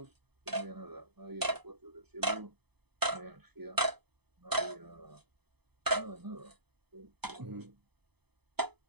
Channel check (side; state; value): left; late; 0.98 ms